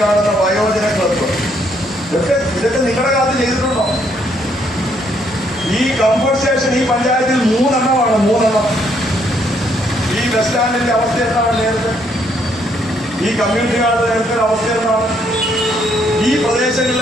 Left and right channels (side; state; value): both; normal; correlation 0.70